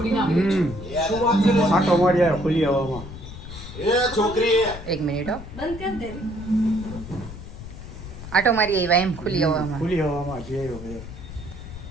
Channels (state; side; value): noise; left; rumble, 12 dB below the sound